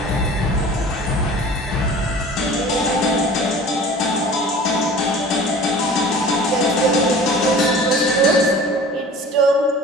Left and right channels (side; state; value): both; normal; correlation 0.43